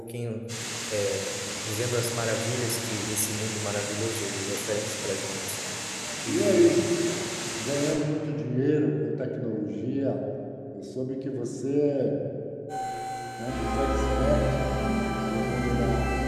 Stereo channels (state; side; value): identical; both; correlation 1.00